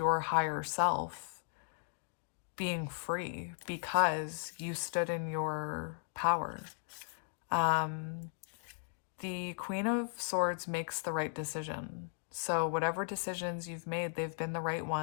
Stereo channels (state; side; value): silent; right; digital silence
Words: higher self being free because you stood in your power. The Queen of Swords makes the right decision. So whatever decisions you've made, they've been the right